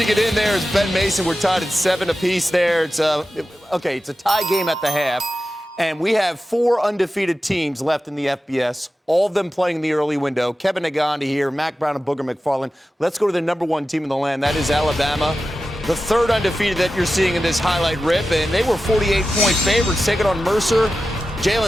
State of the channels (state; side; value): normal; both; correlation 0.93